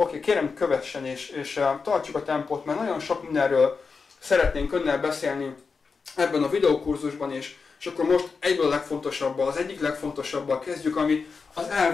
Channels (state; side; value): quieter; right; 4.9 dB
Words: kérem kövessen, és tartsuk a tempót, mert nagyon sok mindenről szeretnénk önnel beszélni ebben a videókurzusban, és akkor most egyből a legfontosabbal, az egyik legfontosabbal kezdjük, ami az